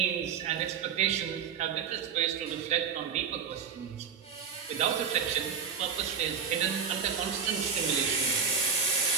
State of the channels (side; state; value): left; quieter; 6.7 dB